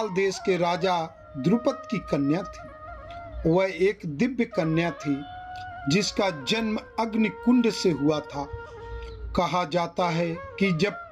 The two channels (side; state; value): both; identical; correlation 1.00